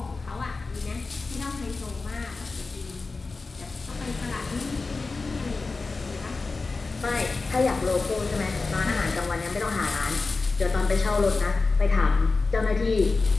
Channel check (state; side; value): quieter; right; 3.9 dB